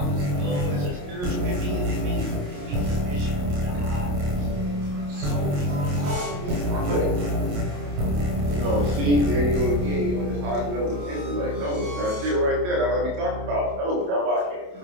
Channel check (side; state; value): left; late; 28 ms